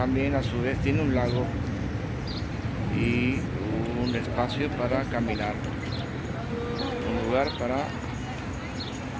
a su vez tiene un lago y un espacio para caminar, un lugar para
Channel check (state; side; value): identical; both; correlation 1.00